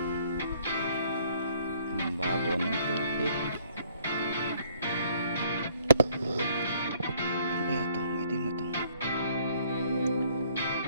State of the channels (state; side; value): inverted; both; correlation -0.62